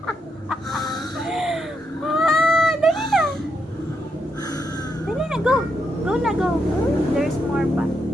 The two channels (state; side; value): normal; both; correlation 0.81